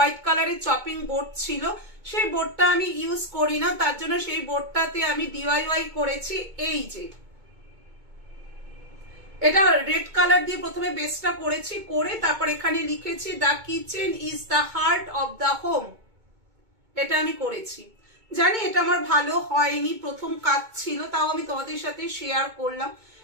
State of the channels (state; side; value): late; left; 2.2 ms